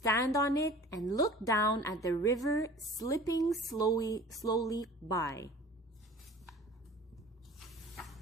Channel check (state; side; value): normal; both; correlation 0.44